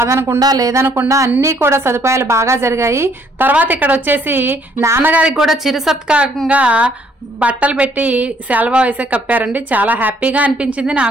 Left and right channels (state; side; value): normal; both; correlation 0.65